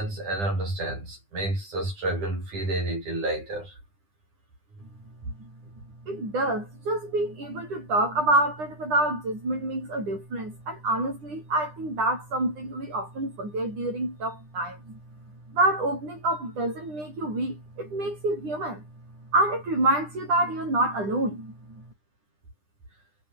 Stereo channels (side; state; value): left; late; 9.9 ms